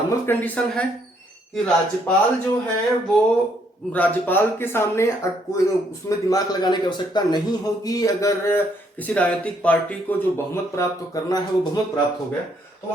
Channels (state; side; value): normal; both; correlation 0.70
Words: कंडीशन है कि राज्यपाल जो है वो, राज्यपाल के सामने कोई उसमें दिमाग लगाने की आवश्यकता नहीं होगी। अगर किसी राजनीतिक पार्टी को जो बहुमत प्राप्त करना है वो बहुमत प्राप्त हो गया तो